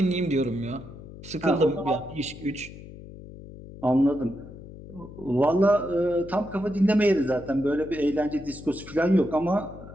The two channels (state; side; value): noise; left; hum, 15 dB below the sound